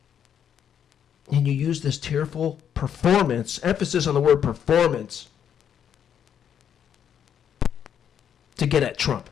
And you use this tearful performance, emphasis on the word performance, to get at Trump.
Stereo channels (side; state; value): right; quieter; 8.7 dB